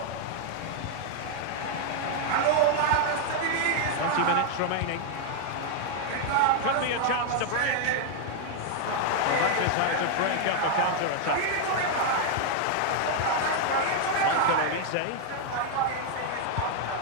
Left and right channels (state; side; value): different; both; correlation 0.00